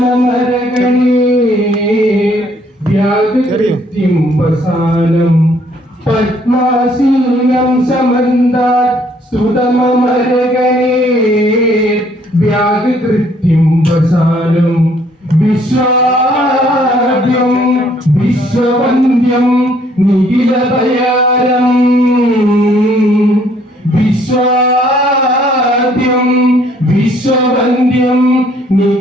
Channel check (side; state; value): both; normal; correlation 0.64